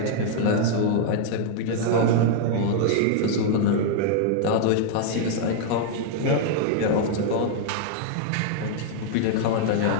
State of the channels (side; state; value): both; different; correlation -0.01